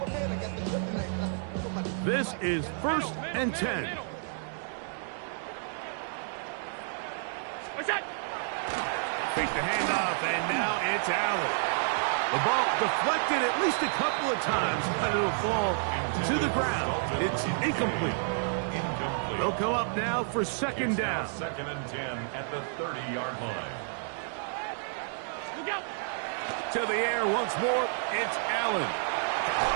This is 1st and 10. Fake the handoff, and now it's Allen. The ball deflected at least a couple of times, but it'll fall to the ground. It's incomplete. They'll come up now for 2nd down. 2nd and 10 at the 30-yard line. To the air once more, it's Allen.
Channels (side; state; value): left; silent; digital silence